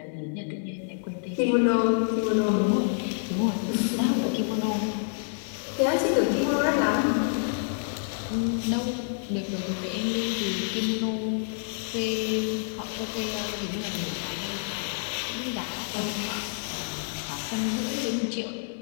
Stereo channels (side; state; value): right; silent; digital silence